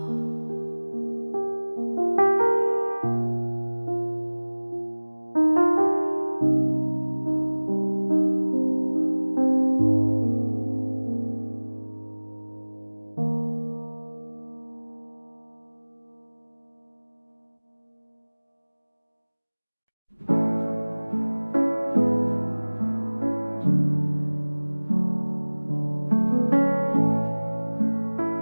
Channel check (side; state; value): both; inverted; correlation -1.00